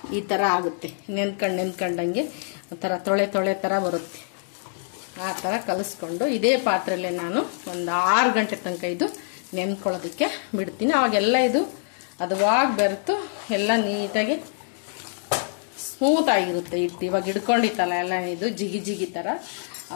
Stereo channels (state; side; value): silent; right; digital silence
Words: ಈ ಥರ ಆಗುತ್ತೆ. ನೆನ್ಕೊಂಡಂಗೆ ಒಂಥರ ತೊಳೆ ಥರ ಬರುತ್ತೆ. ಆ ಥರ ಕಲಿಸ್ಕೊಂಡು ಇದೇ ಪಾತ್ರೆಯಲ್ಲೇ ನಾನು ಒಂದು 6 ಗಂಟೆ ತನಕ ಇದು ನೆನ್ಕೊಳ್ಳೋದಕ್ಕೆ ಬಿಡ್ತೀನಿ. ಅವಾಗೆಲ್ಲ ಇದು ಹದವಾಗಿ ಬೆರೆತು ಎಲ್ಲ ನೀಟಾಗಿ ಸ್ಮೂತ್ ಆಗಿರುತ್ತೆ ಹಿಟ್ಟು. ಇವಾಗ ಹಿಡ್ಕೊಂಡಿತ್ತಲ್ಲ ಎಲ್ಲ ಇದು ಜಿಗಿ ಥರ,